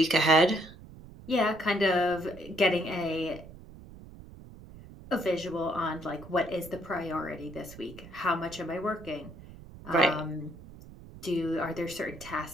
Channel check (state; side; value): noise; right; rumble, 17 dB below the sound